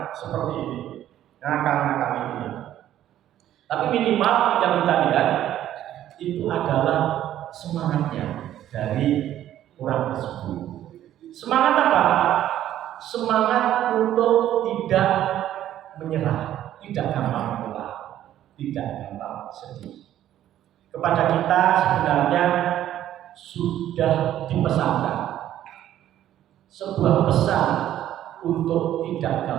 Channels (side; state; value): left; quieter; 12.1 dB